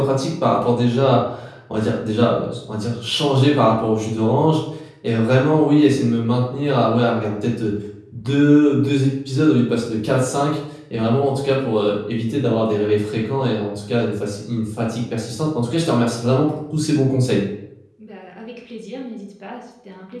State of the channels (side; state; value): both; identical; correlation 1.00